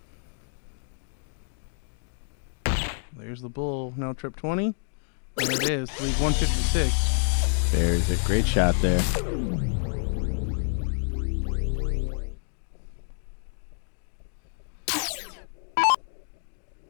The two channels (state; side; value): silent; right; digital silence